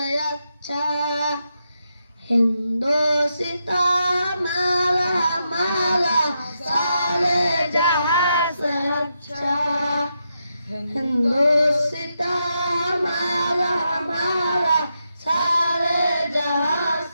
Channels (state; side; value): inverted; both; correlation -0.84